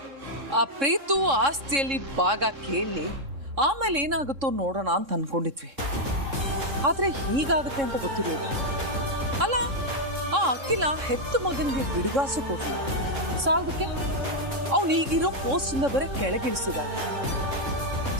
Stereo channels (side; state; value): left; late; 3.6 ms